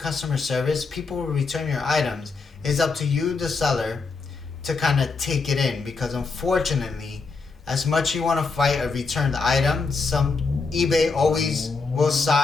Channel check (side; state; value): right; quieter; 4.4 dB